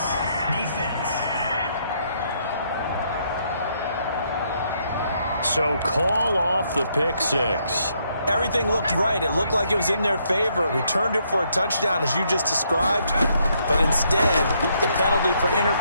Defense. So call off the pick six. Everything looked right. It looked like it was in their favor. Returned it for a touchdown, as you just described. But instead, the penalty for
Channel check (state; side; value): inverted; both; correlation -0.73